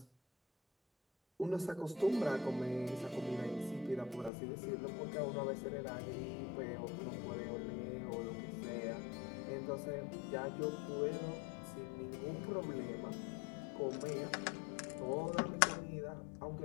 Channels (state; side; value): drops out; right; at 4.3 s